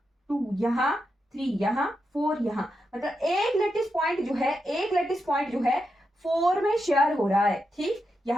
2 यहाँ, 3 यहाँ, 4 यहाँ, मतलब एक लैटिस पॉइंट जो है, एक लैटिस पॉइंट जो है 4 में शेयर हो रहा है। ठीक,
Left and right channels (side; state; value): both; normal; correlation 0.86